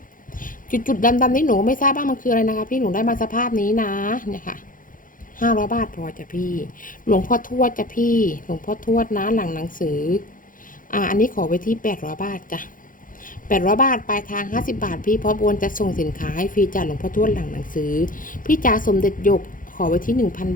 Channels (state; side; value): late; right; 0.39 ms